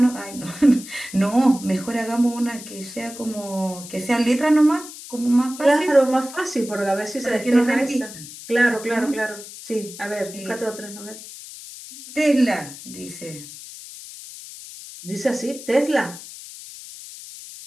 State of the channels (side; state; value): left; noise; hiss, 14 dB below the sound